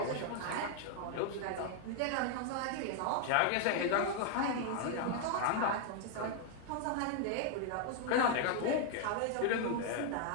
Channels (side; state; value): both; different; correlation 0.00